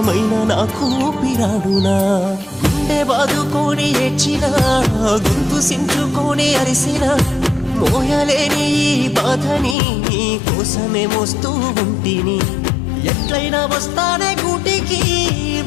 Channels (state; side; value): drops out; right; at 9.8 s